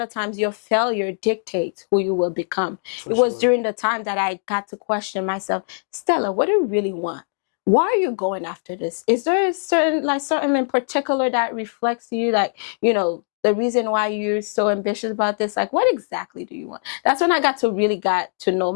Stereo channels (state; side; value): silent; right; digital silence